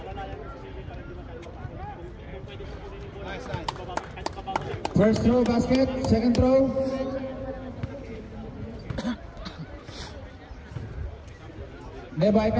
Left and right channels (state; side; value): identical; both; correlation 1.00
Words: First throw, basket. Second throw. May